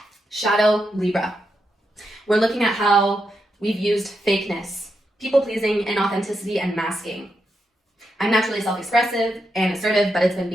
shadow Libra. We're looking at how we've used fakeness, people-pleasing, inauthenticity, and masking. I'm naturally self-expressive and assertive, but it's been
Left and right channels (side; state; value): both; normal; correlation 0.84